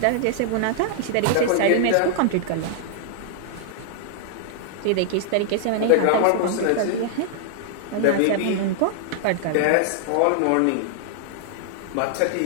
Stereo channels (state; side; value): different; both; correlation -0.01